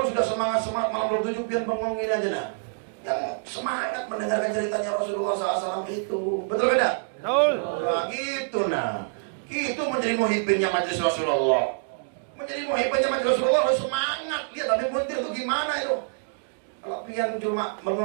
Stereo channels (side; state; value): left; silent; digital silence